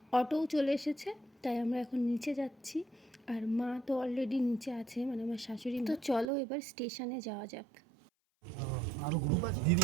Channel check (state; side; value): drops out; left; at 6.2 s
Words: অটোও চলে এসেছে, তাই আমরা এখন নিচে যাচ্ছি। আর মা তো অলরেডি নিচে আছে, মানে আমার শাশুড়ি। তো চলো এবার স্টেশনে যাওয়া যাক। আরো গ্রুপ আছে,